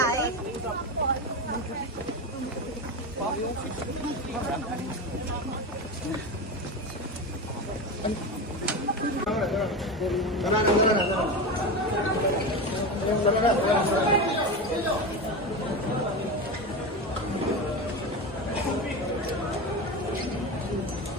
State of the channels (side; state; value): both; normal; correlation 0.21